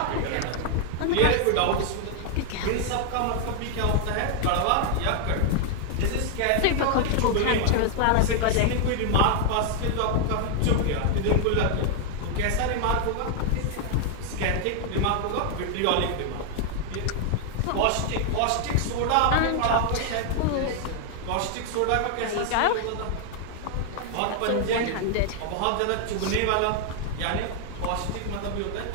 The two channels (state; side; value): different; both; correlation 0.00